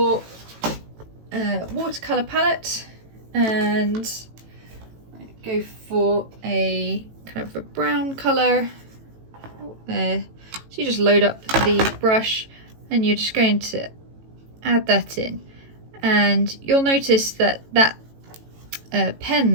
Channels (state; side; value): late; left; 18 ms